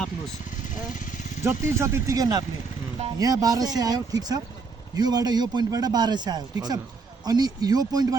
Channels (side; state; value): left; quieter; 4.6 dB